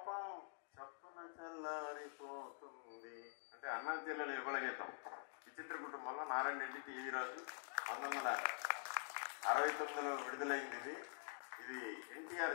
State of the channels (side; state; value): right; silent; digital silence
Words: చప్పున చల్లారిపోతుంది. అంటే అన్నా చెల్లెల యుగల గీతం. విచిత్ర కుటుంబంలో నారాయణ రెడ్డి టీవీ రాజు 1969లో విడుదలైంది. ఇది ఎన్టీఆర్